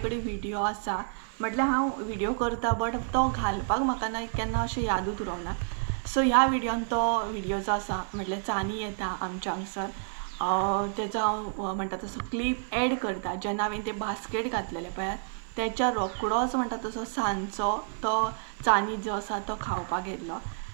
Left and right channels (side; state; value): left; silent; 55 dB below the other